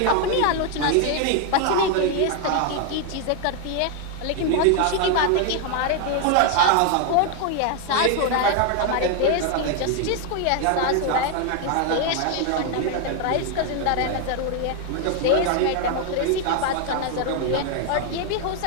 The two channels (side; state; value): both; different; correlation 0.00